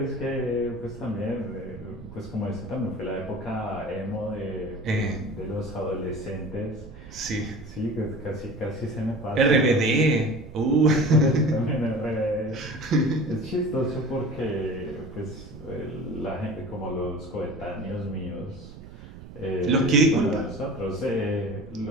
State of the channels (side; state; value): right; noise; rumble, 16 dB below the sound